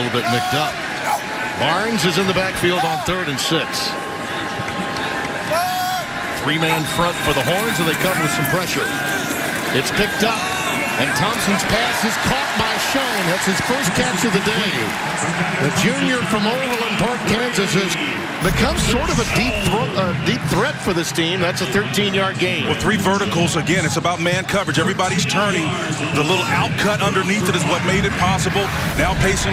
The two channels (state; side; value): identical; both; correlation 1.00